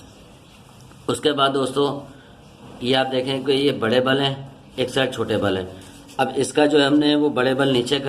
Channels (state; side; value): identical; both; correlation 1.00